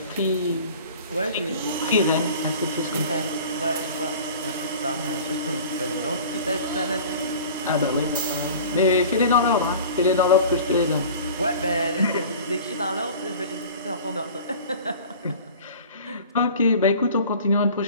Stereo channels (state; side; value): inverted; both; correlation -0.42